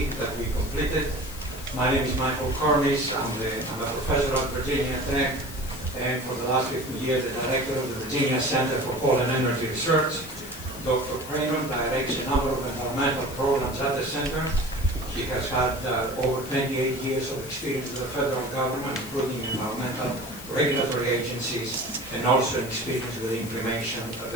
that we completed. My name is Michael Karmis. I'm a professor at Virginia Tech, and for the last 15 years, the director of the Virginia Center for Coal and Energy Research. Dr. Kramer directs a number of environmental programs at the center. He has had over 28 years of experience with the federal government, including environmental regulatory agencies, and also experience with implementation of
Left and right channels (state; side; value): noise; left; hiss, 14 dB below the sound